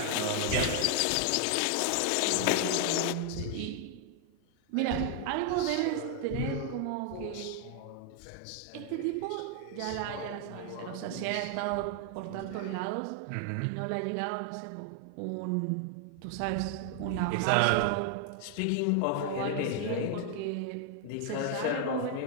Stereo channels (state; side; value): different; both; correlation 0.00